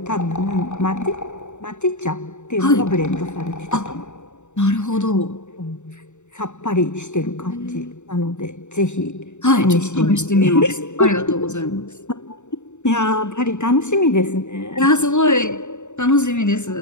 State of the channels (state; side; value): late; right; 0.84 ms